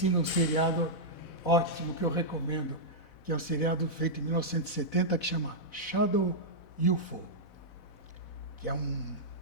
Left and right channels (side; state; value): right; late; 4.0 ms